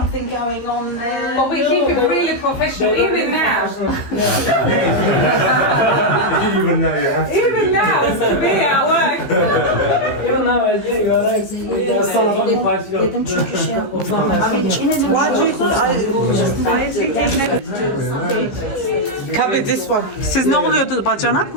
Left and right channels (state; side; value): late; right; 15 ms